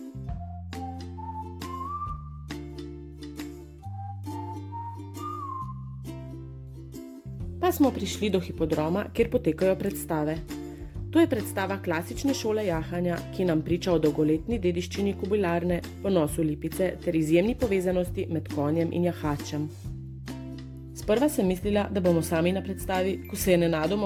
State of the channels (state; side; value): identical; both; correlation 1.00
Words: Pa smo prišli do hipodroma, kjer potekajo predstave. To je predstava klasične šole jahanja, ki nam priča o dolgoletni dediščini Kobilarne, ponosu Lipice ter izjemni povezanosti med konjem in jahačem. Sprva sem mislila, da bomo sami na predstavi, ko se je